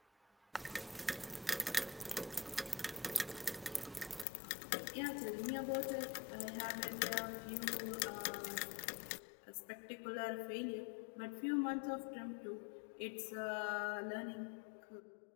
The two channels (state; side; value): drops out; right; at 4.2 s